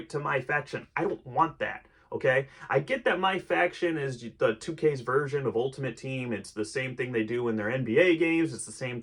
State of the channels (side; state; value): both; identical; correlation 1.00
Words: to my faction. I don't want that. Okay, I get that my faction is the 2K's version of Ultimate Team. It's the same thing they do in their NBA games. It's the same